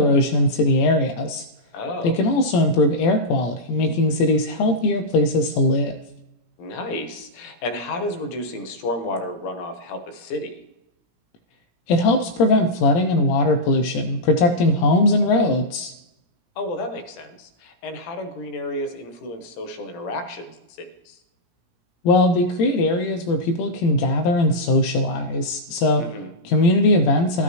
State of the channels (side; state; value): right; late; 17 ms